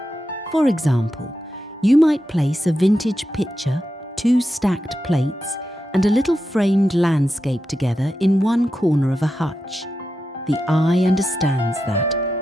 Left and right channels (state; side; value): normal; both; correlation 0.89